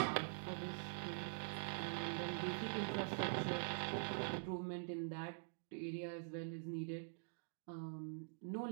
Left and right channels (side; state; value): left; silent; digital silence